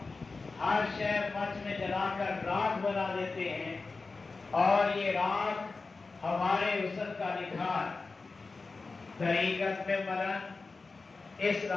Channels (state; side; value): quieter; right; 4.0 dB